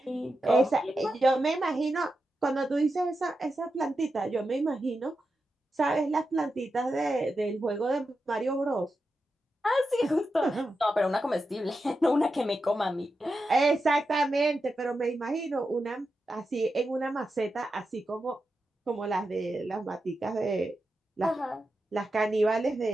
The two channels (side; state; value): both; normal; correlation 0.89